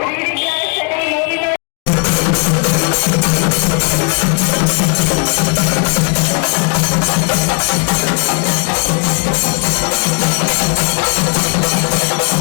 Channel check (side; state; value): right; quieter; 38.6 dB